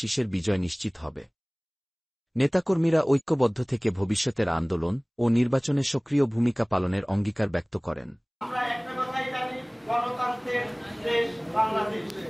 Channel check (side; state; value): both; identical; correlation 1.00